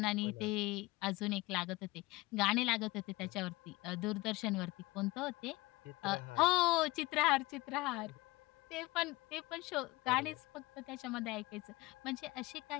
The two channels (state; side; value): quieter; right; 21.7 dB